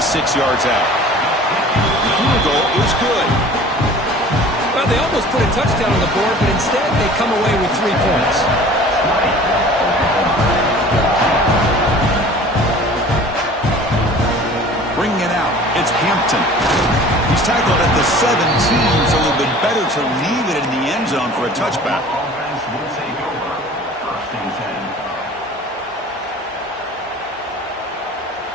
yards out. The field goal is good. Well, they almost put a touchdown on the board, but instead they come away with 3 points. Bringing it out, it's Hampton. He's tackled at the 17, so a little bit better to leave it in the end zone for a touchback.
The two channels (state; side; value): normal; both; correlation 0.45